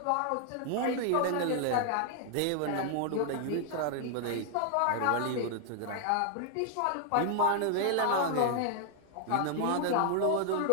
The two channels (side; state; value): both; different; correlation 0.00